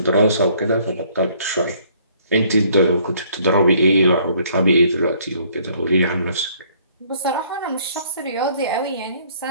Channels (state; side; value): inverted; both; correlation -0.62